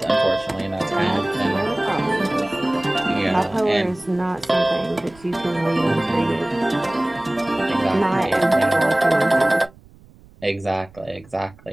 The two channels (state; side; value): noise; right; rumble, 25 dB below the sound